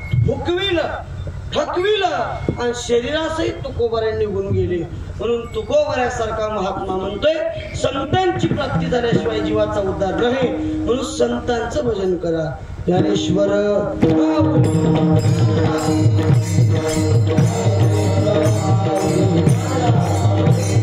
हुकविलं थकविलं आणि शरीरासहित तुकोबारांनी निघून गेले म्हणून तुकोबाऱ्यासारखा महात्मा म्हणतोय संतांची प्राप्ती झाल्याशिवाय जीवाचा उद्धार नाही म्हणून संतांचं भजन करा ज्ञानेश्वर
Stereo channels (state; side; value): identical; both; correlation 1.00